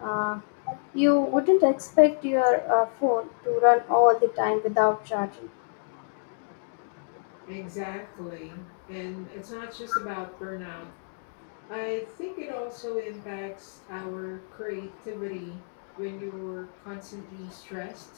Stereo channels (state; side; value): silent; right; digital silence